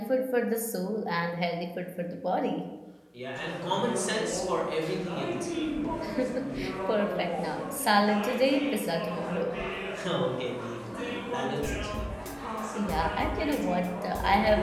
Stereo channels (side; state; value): both; identical; correlation 1.00